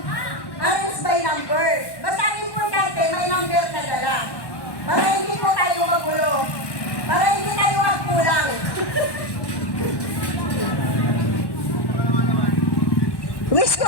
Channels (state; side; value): late; right; 1.1 ms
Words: by number. Basta importante, may number ka dala. Para hindi po tayo magulo. Para hindi tayo magkulang. Wish ko